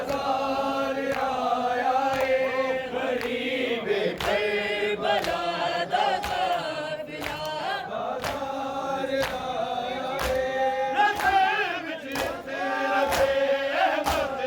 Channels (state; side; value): identical; both; correlation 1.00